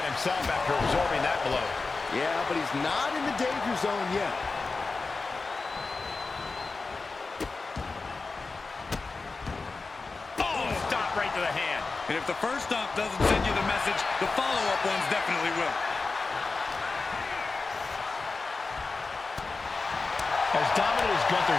himself after absorbing that blow. Yeah, but he's not in the danger zone yet. Oh, stop right to the hand. And if the first stomp doesn't send you the message, the follow-up ones definitely will. As dominant as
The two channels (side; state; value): right; quieter; 4.0 dB